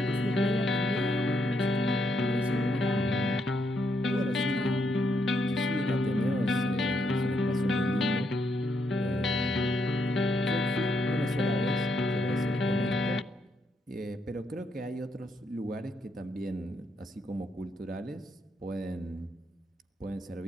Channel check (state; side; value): normal; both; correlation 0.77